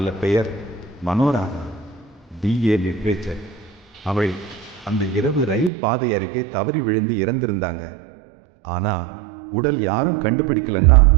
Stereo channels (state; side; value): drops out; left; at 5.7 s